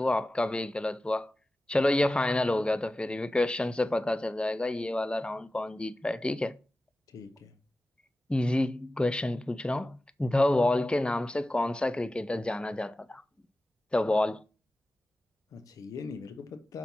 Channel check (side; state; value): both; normal; correlation 0.95